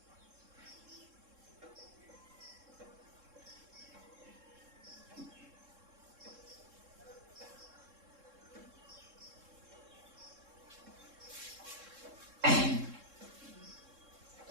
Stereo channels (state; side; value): late; left; 3.7 ms